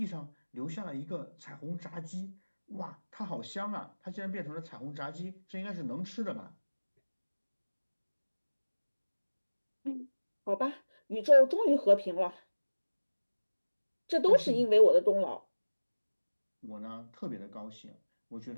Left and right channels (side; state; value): both; inverted; correlation -1.00